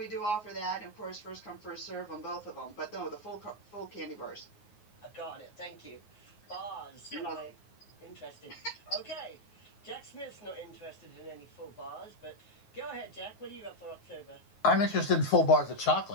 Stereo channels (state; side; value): late; right; 9.5 ms